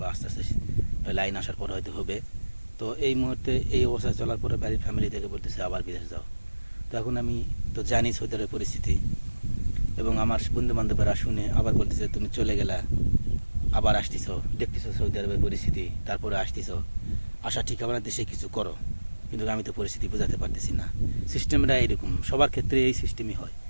আস্তে আস্তে লাইন আসার পর হয়তো হবে। তো এই মুহূর্তে এই অবস্থায় চলার পরে বাড়ির ফ্যামিলি থেকে বলতেছে আবার বিদেশ যাও। তো এখন আমি তো জানি সৌদি আরবের পরিস্থিতি, এবং আমার বন্ধু বান্ধবরা শুনে আবার বলতেছে তুমি চলে গেলা, আবার আসতেছ, দেখতেছো সৌদি আরবের পরিস্থিতি, তারপরে আসতেছ, আসা ঠিক হবে না, দেশে কিছু করো। কিন্তু আমি তো পরিস্থিতি বোঝাতে পারতেছি না। সিস্টেমটা এইরকম, সবার ক্ষেত্রে এই সিস্টেমই হয়,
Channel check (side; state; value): both; inverted; correlation -1.00